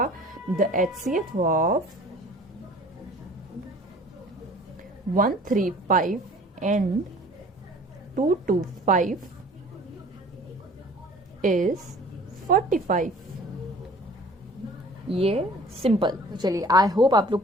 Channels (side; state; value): both; normal; correlation 0.48